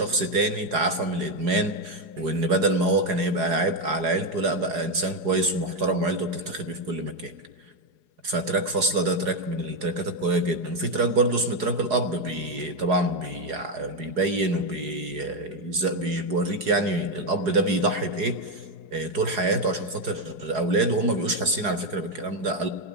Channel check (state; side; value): late; left; 4.8 ms